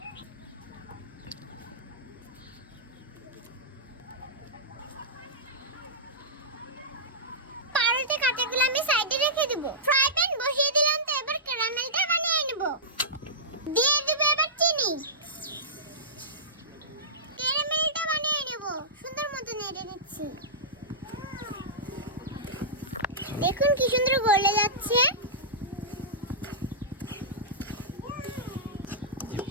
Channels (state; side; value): normal; both; correlation -0.16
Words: পাউরুটি কাটাগুলো আমি সাইডে রেখে দেব। ফ্রাই প্যান বসিয়ে দিলাম, তো এবার ক্যারামেলটা বানিয়ে নেব। দিয়ে দেব এবার চিনি। ক্যারামেলটা বানিয়ে নেব, সুন্দর মতো নেড়ে নিচ্ছি। দেখুন কি সুন্দর গলে যাচ্ছে।